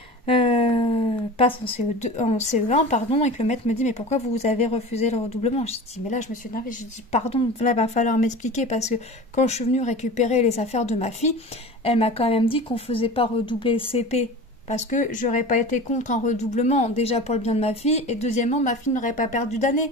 passe en CE1, pardon, et que le maître me dit mais pourquoi vous avez refusé le redoublement? Je dis mais là je me suis énervée, je dis pardon, là va falloir m'expliquer parce que quand je suis venue récupérer les affaires de ma fille, elle m'a quand même dit qu'on faisait pas redoubler le CP parce que j'aurais pas été contre un redoublement, déjà pour le bien de ma fille, et deuxièmement ma fille n'aurait pas perdu d'année.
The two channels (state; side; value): normal; both; correlation 0.35